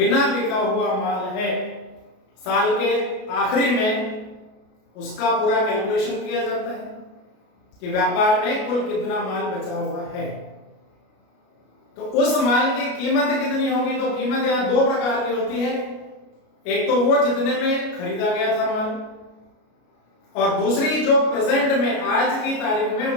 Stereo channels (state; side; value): late; right; 33 ms